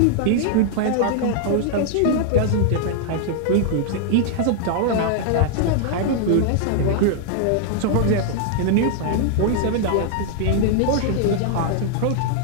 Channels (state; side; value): different; both; correlation 0.00